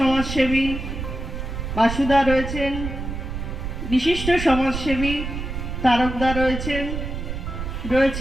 বাসুদা রয়েছেন, বিশিষ্ট সমাজসেবী তারকদা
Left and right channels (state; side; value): noise; right; rumble, 5 dB below the sound